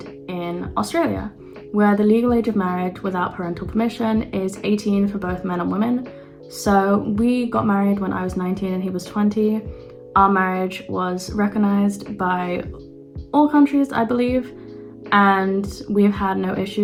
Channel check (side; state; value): both; identical; correlation 1.00